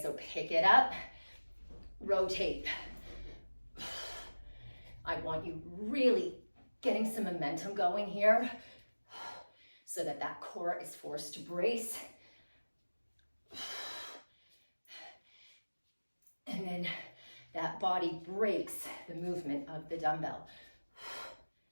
so pick it up, rotate. I want you really getting some momentum going here so that that core is forced to brace. And then that body breaks the movement of the dumbbell.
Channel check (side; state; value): both; inverted; correlation -1.00